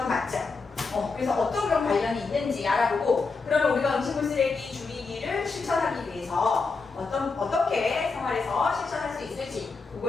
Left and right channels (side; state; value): right; quieter; 4.4 dB